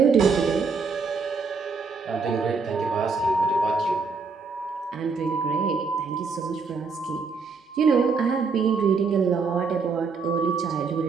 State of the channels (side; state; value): left; quieter; 4.8 dB